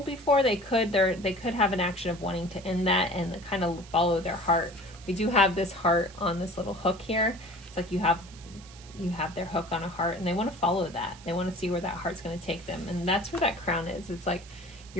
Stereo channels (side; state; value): right; noise; hiss, 20 dB below the sound